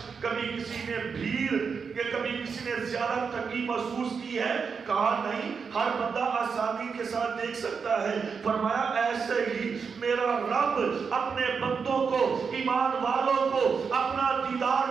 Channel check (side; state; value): left; quieter; 5.8 dB